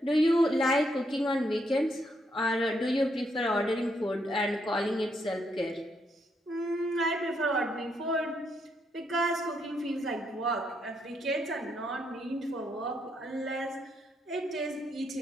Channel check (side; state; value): both; normal; correlation 0.76